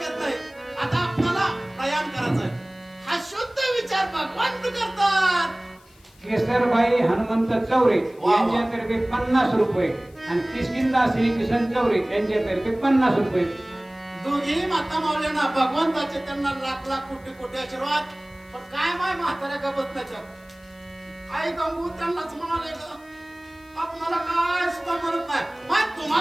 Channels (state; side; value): noise; left; hiss, 29 dB below the sound